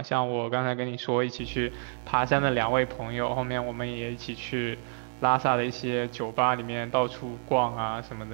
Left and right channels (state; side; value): silent; left; 59 dB below the other